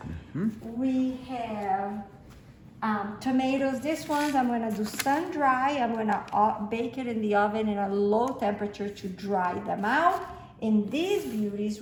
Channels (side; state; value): both; identical; correlation 1.00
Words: We have tomatoes. This ones I'm gonna do sun dry. I'm gonna bake it in the oven in a low temperature to dry them out. And these beauties,